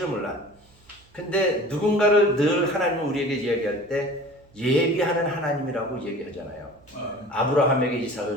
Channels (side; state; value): right; noise; hum, 29 dB below the sound